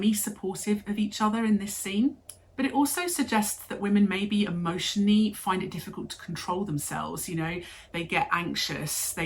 of each other in this scene. But it also suggests that women maybe emotionally find it difficult to control themselves. You know, they get anxious,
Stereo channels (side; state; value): both; identical; correlation 1.00